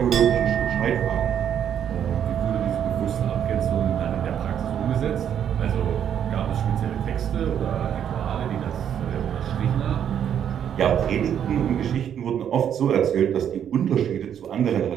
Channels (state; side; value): quieter; left; 9.1 dB